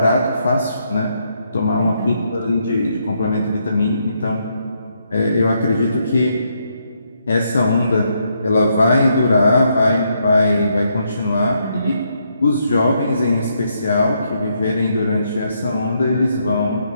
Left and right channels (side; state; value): both; inverted; correlation -0.76